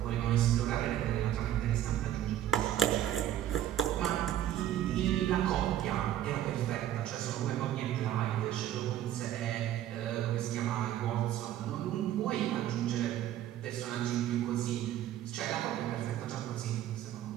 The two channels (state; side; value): quieter; left; 12.0 dB